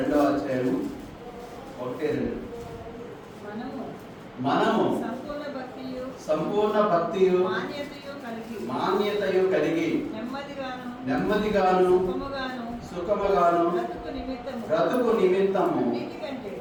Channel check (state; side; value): identical; both; correlation 1.00